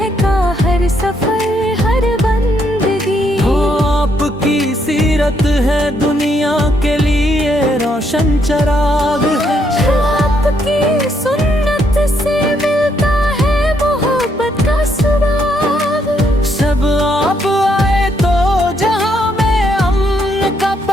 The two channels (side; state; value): both; normal; correlation 0.74